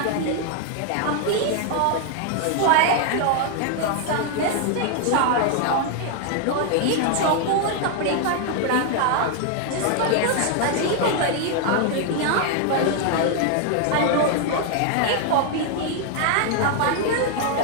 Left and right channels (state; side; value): different; both; correlation 0.00